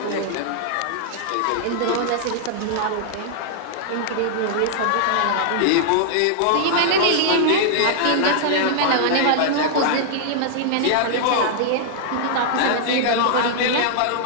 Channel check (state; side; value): different; both; correlation -0.01